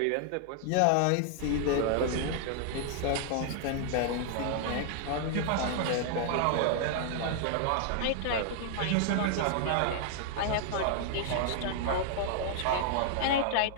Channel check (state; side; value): different; both; correlation 0.00